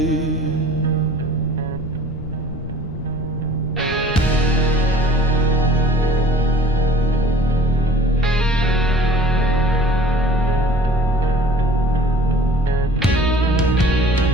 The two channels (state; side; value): noise; left; rumble, 10 dB below the sound